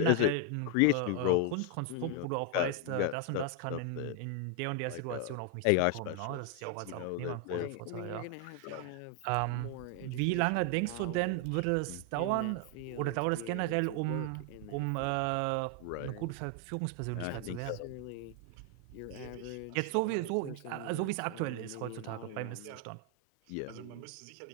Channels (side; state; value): both; different; correlation 0.00